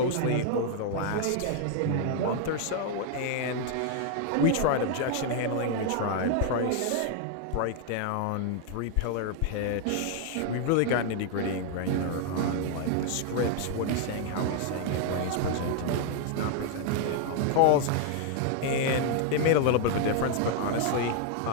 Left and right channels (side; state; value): both; different; correlation 0.00